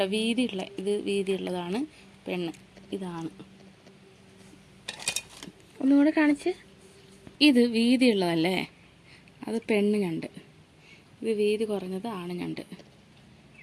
വീതിയുള്ള, ഇത് വീതിയുള്ളതാണ് പെണ്ണ്, ഇതാണ്. ഒന്നുകൂടെ കാണിച്ച്. ഇത് വീതിയുള്ളതല്ലേ, അത് പെണ്ണ് ഞണ്ട്. ഇത് വീതി കുറഞ്ഞത് ആണ് ഞണ്ട്.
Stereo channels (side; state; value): both; identical; correlation 1.00